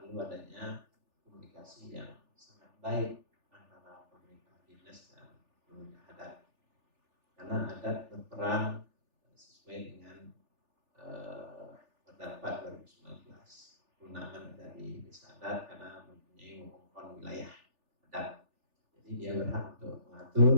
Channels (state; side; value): late; left; 3.4 ms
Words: perlu adanya komunikasi yang sangat baik antara pemerintah dinas dan pemerintah adat. Karena adat berperan sesuai dengan pendapat 2019 kewenangan dari desa adat karena mempunyai wewengkon wilayah adat. Jadi dia berhak untuk